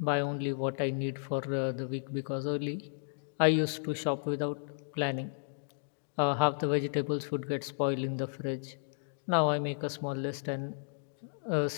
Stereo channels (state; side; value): silent; right; digital silence